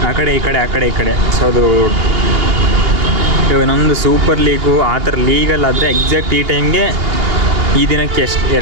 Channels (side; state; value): left; late; 2.9 ms